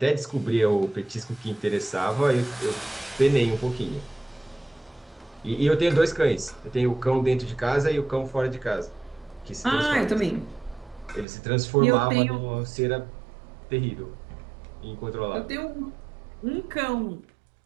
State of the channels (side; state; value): left; drops out; at 11.2 s